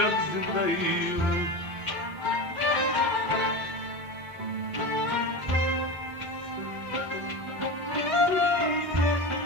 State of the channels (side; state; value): both; normal; correlation 0.25